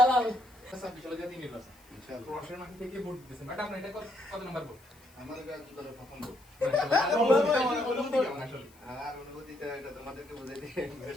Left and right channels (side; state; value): left; noise; hiss, 28 dB below the sound